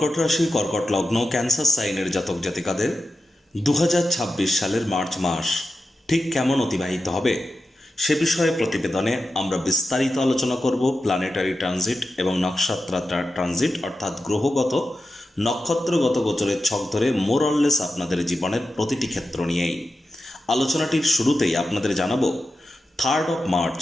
রাশি, কর্কট লগ্ন, ক্যান্সার সাইনের জাতক জাতিকাদের 2026 সালের মার্চ মাস ঠিক কেমন অতিবাহিত হবে সে বিষয়ে প্রতিবেদনে আমরা বিস্তারিত আলোচনা করব। প্ল্যানেটারি ট্রানজিট এবং নক্ষত্র ট্রানজিট অর্থাৎ গ্রহগত নক্ষত্রগত গোচরের ছক ধরে মোরললেস আপনাদের জীবনের প্রতিটি ক্ষেত্র নিয়েই আলোচনাটির শুরুতেই আপনাদের জানাবো 3 মার্চ,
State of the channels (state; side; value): normal; both; correlation 0.91